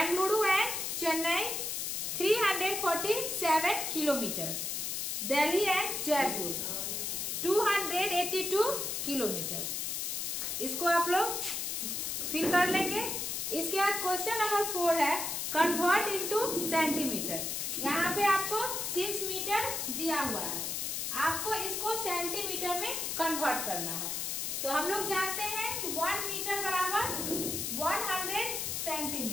and Chennai 347 kilometre. Delhi and Jaipur 282 kilometre. इसको आप लोग फिल कर लेंगे। इसके बाद क्वेश्चन नंबर 4 है कन्वर्ट इनटू सेंटीमीटर। यहाँ पे आपको 6 मीटर दिया हुआ है, आपको इसको सेंटीमीटर में कन्वर्ट करना है। तो हम लोग जानते हैं कि 1 मीटर बराबर 100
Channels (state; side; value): noise; left; hiss, 2 dB below the sound